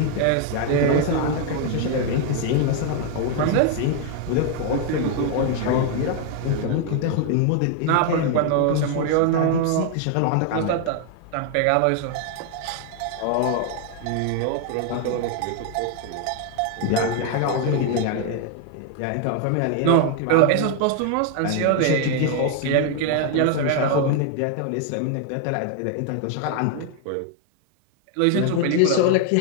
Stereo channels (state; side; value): different; both; correlation 0.00